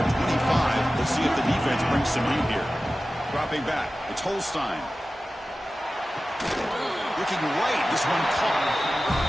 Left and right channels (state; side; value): normal; both; correlation 0.95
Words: 25. Let's see if the defense brings some heat here. Dropping back, it's Holstein. Looking right, this one caught.